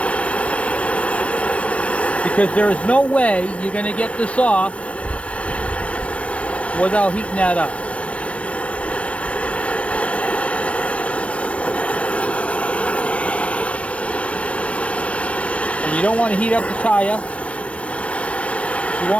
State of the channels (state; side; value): late; right; 0.063 ms